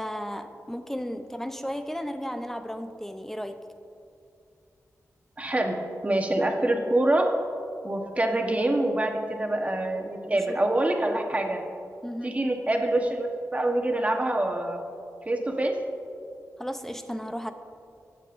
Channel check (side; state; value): both; normal; correlation 0.92